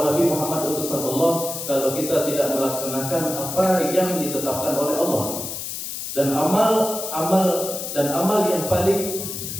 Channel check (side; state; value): left; noise; hiss, 6 dB below the sound